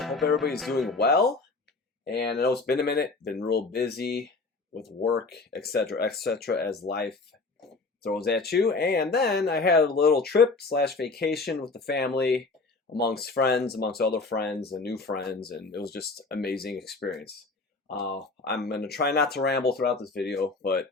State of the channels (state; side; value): quieter; right; 3.7 dB